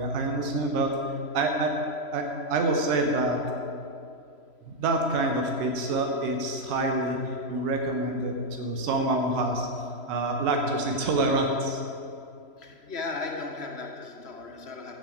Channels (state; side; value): late; right; 3.0 ms